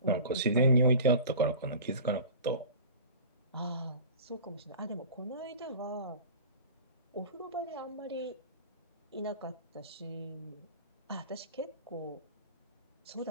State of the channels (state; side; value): inverted; both; correlation -0.38